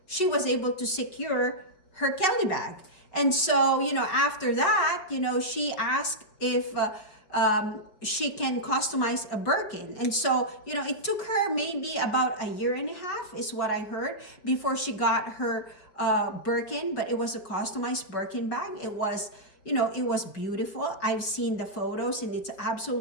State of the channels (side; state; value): right; late; 5.2 ms